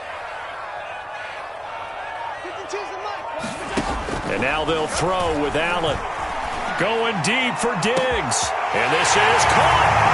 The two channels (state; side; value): identical; both; correlation 1.00